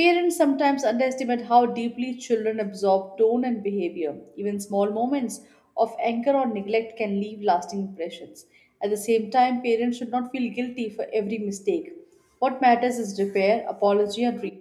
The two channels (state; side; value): identical; both; correlation 1.00